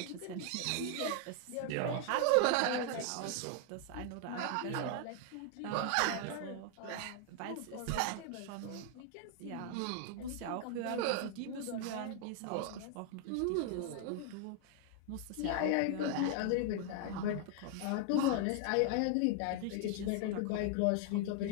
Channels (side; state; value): both; different; correlation 0.00